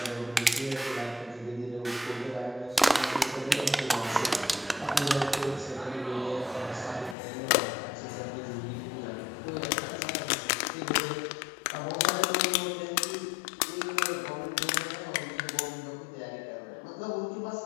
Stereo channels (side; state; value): right; drops out; at 7.2 s